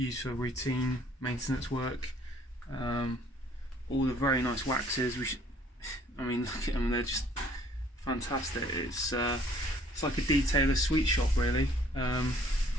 for routine maintenance work. All the very nice waxes. I mean, look at them; they're just fantastic. It's it's like a detailer sweet shop really. And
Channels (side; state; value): both; normal; correlation 0.59